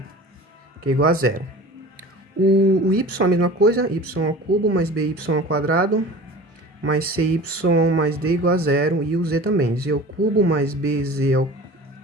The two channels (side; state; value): both; normal; correlation 0.39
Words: que é igual a zero. O y é a mesma coisa, y ao cubo mais by ao quadrado mais cy mais d igual a zero. E o z também, z ao cubo mais bz